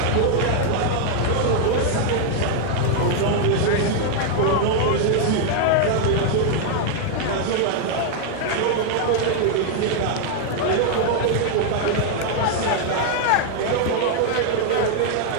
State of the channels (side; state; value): both; different; correlation 0.00